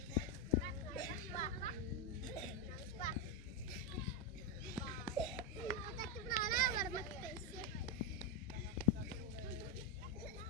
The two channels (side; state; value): both; normal; correlation 0.06